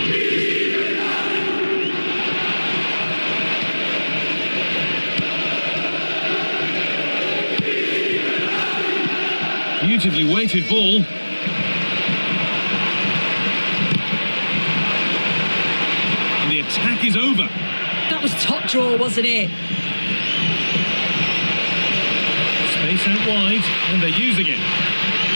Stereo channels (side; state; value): both; inverted; correlation -1.00